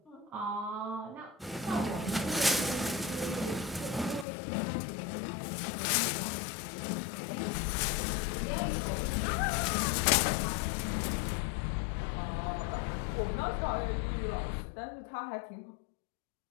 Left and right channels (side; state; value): right; drops out; at 4.2 s